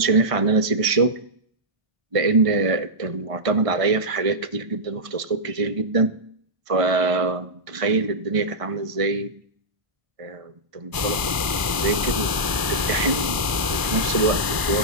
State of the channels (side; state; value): left; late; 1.0 ms